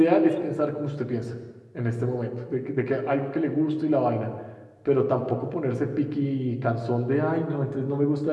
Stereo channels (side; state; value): both; identical; correlation 1.00